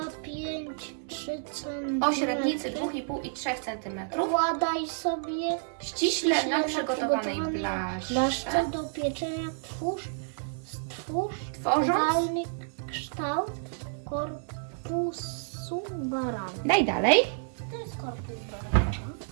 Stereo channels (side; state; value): left; silent; digital silence